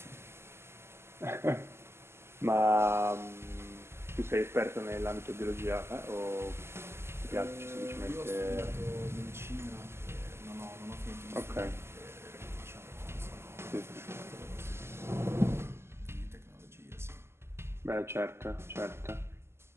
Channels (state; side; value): late; left; 0.12 ms